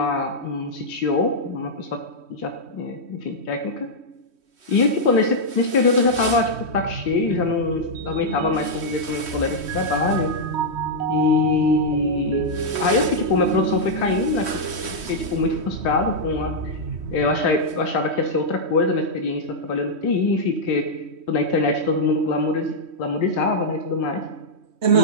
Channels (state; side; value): late; left; 3.1 ms